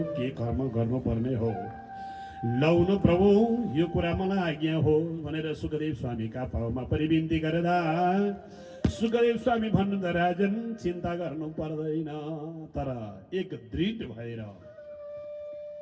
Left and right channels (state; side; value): identical; both; correlation 1.00